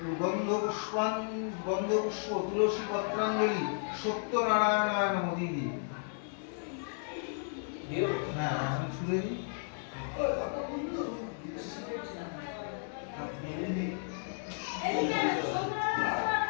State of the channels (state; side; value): silent; right; digital silence